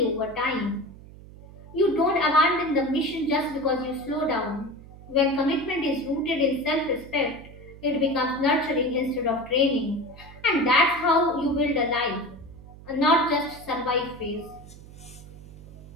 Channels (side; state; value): right; noise; hum, 18 dB below the sound